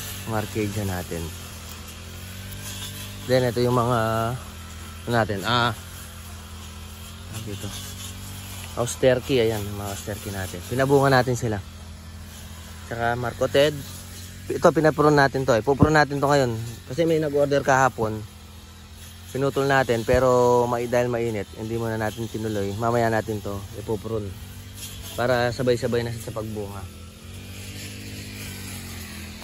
arcadia natin. Then ito yung mga ano natin. Dito. Austerky, ayan, mga austerky natin. Pinabunga natin sila. Tsaka marcoted. Ito, pinapron natin to. Pupron natin to ngayon. Kasi may nag-order kahapon. Pinutol natin, pero dahil mainit, hindi muna natin tinuloy. Mamaya natin to ipupron. Para sabay-sabay na sa pagbunga.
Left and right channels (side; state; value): both; identical; correlation 1.00